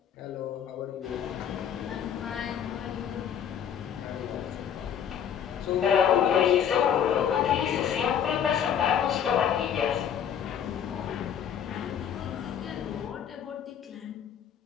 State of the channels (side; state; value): right; quieter; 8.7 dB